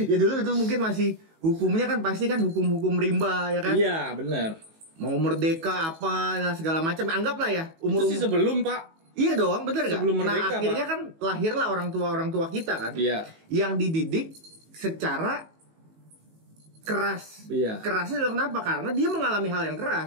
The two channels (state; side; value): late; left; 18 ms